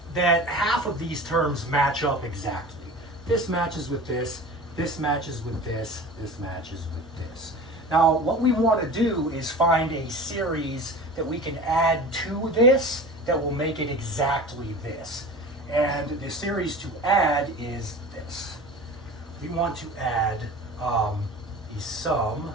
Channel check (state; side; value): normal; both; correlation 0.36